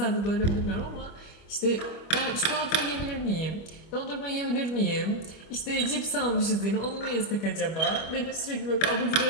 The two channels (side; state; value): right; late; 25 ms